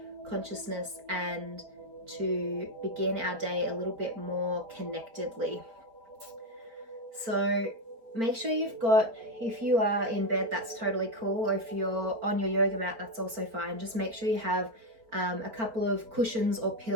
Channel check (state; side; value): late; left; 4.4 ms